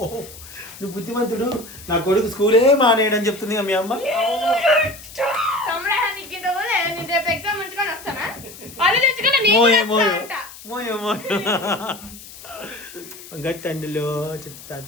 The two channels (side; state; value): left; noise; hiss, 17 dB below the sound